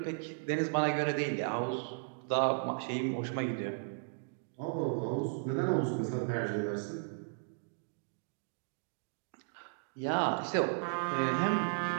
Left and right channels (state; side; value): silent; left; digital silence